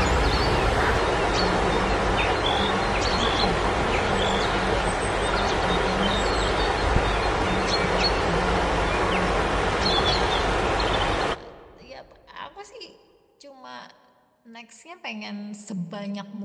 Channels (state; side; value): identical; both; correlation 1.00